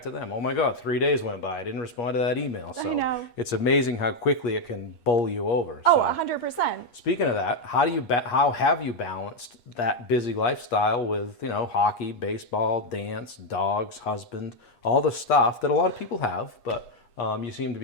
to them. Oh my God, 3 days went by. I didn't respond to that email. So know. it's amazing how quickly it can bowl you over. Oh, So 100%. speaking of that, how have you balanced that busy lifestyle with, hockey, baseball, dance, dogs, husband, all the stuff that a lot of people have, but you seem to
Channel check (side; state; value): right; late; 8.4 ms